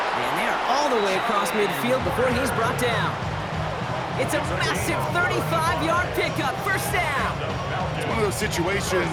And they're all the way across midfield before he's brought down. It's a massive 35-yard pickup, 1st down. It's one of those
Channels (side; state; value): both; identical; correlation 1.00